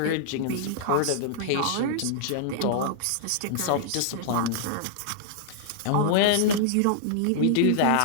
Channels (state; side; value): different; both; correlation -0.01